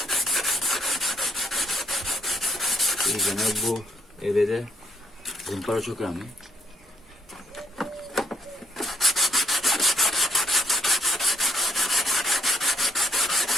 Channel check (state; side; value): normal; both; correlation 0.70